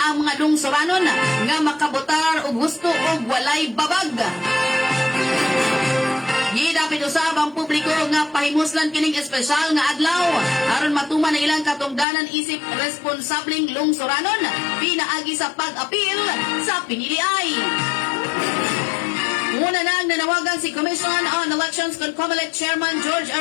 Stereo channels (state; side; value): drops out; right; at 12.1 s